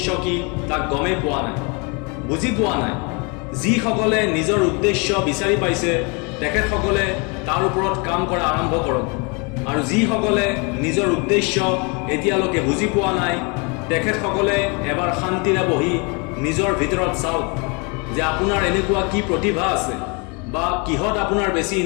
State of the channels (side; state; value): right; quieter; 31.9 dB